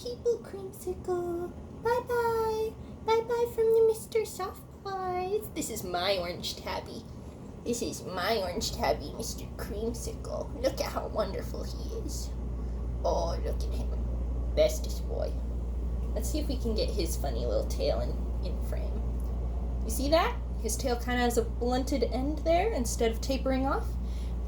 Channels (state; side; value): identical; both; correlation 1.00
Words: people, Creamsicle. Bye-bye. Bye-bye from the Mr. Soft Pies. This is my orange tabby. This is my orange tabby, Mr. Creamsicle. Look at how wonderful he is. Oh, look at him. Bestest boy. Let's see if we can get his funny little tail in frame. You see that? His tail kind of has a blunted end there instead of tapering off.